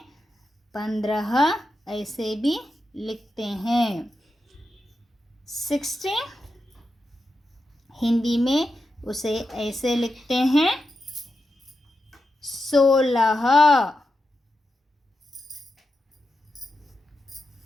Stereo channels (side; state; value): both; normal; correlation 0.88